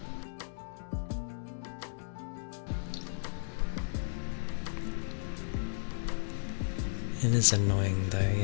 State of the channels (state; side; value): silent; right; digital silence